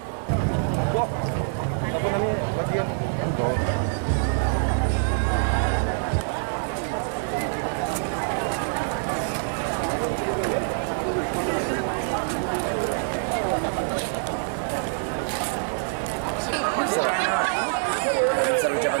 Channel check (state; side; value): silent; left; 58 dB below the other